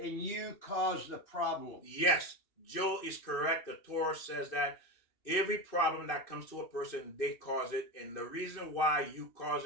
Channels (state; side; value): late; right; 2.6 ms